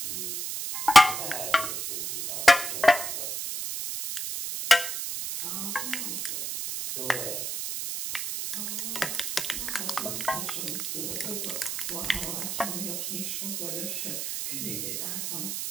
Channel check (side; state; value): right; noise; hiss, 3 dB below the sound